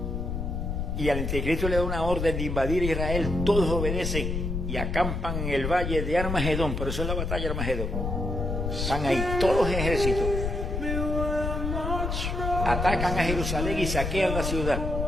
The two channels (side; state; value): left; noise; rumble, 2 dB below the sound